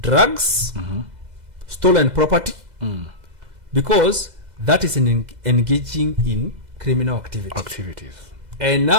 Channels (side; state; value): left; late; 2.0 ms